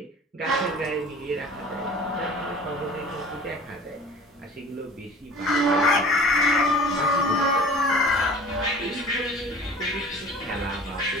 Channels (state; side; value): normal; both; correlation 0.45